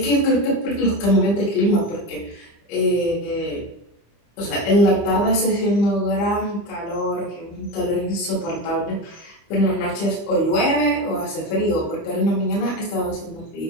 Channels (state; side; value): late; right; 25 ms